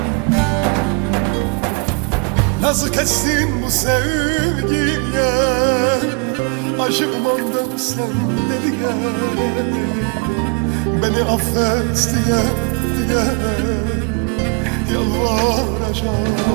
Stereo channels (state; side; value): quieter; left; 30.4 dB